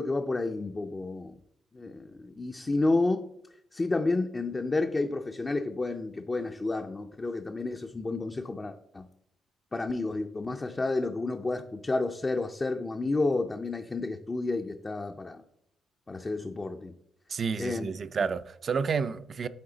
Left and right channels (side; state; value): both; normal; correlation 0.91